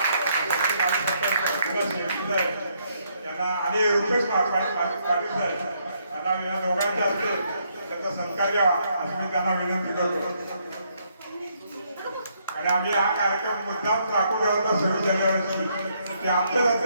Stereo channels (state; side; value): inverted; both; correlation -0.73